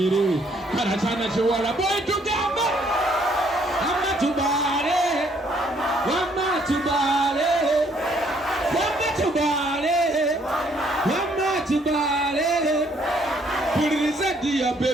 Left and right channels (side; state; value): both; normal; correlation 0.66